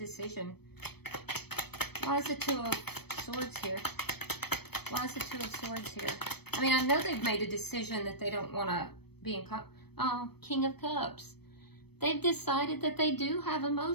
Why is the Two of Swords here? Why is the Two of Swords here? I mean, I know they've made a decision that they don't want to be in... King of Cups. They've decided that they do have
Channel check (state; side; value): late; right; 0.97 ms